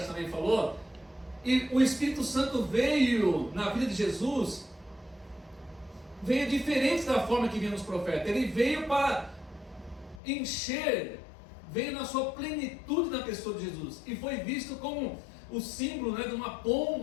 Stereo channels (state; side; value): drops out; right; at 10.2 s